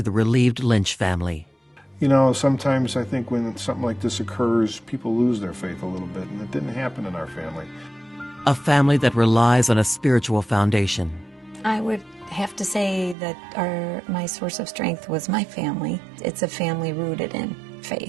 the relieved Lynch family. Sometimes I think when something like this occurs, people lose their faith a little bit, and it didn't happen in our family. A family that relies on a spiritual foundation. I would have to say that my source of strength was my family. It's a family rooted in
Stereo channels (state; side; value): drops out; left; at 13.2 s